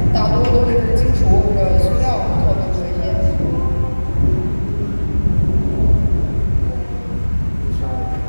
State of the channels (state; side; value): inverted; both; correlation -1.00